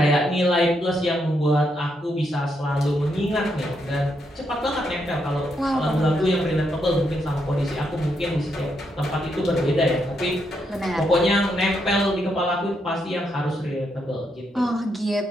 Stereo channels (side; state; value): both; normal; correlation 0.79